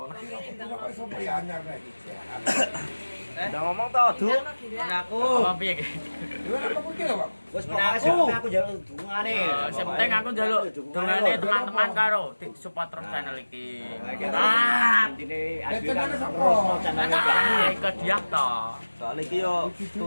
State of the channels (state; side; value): inverted; both; correlation -1.00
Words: kok iso anyar nek iki. Udah ngomong to, Du. Aku. Apa piye iki? Lha apa kuwi lho, Pak? Wes pokoke aku njaluk dungane. Sing penting aku njaluk dongane teman-teman karo support terus channel iki. Ah, Intine Ya, adik channel kan sapa? terus channel nah, ke dia to. Soalnya iki yo